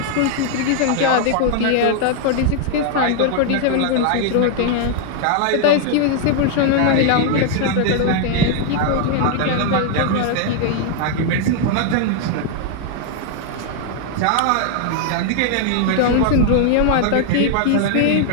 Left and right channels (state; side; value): different; both; correlation 0.00